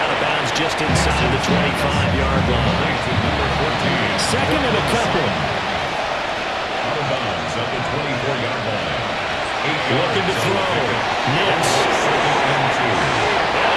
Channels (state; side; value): identical; both; correlation 1.00